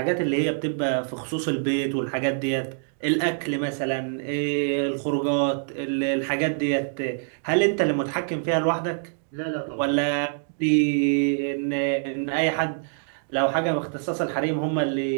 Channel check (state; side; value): silent; left; digital silence